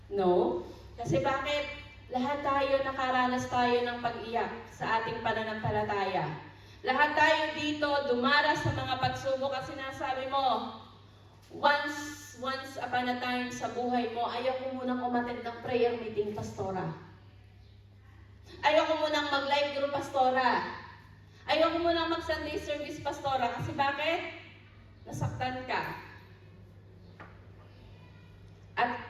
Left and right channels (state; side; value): identical; both; correlation 1.00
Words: No? Kasi bakit? Lahat tayo nakaranas tayo ng pag-iyak sa ating pananampalataya. Lahat tayo dito dumaras sa mga pagsubok at sinasabi mo, once upon a time sa buhay mo, ayaw ko munang umattend ng prayer meeting, pastora. Ayaw ko munang mag-live group, pastora. Ayaw ko munang mag-Sunday service, pastora. Kasi bakit? Nasaktan ka.